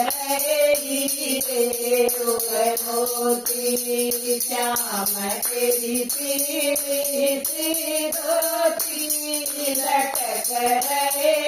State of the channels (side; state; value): both; identical; correlation 1.00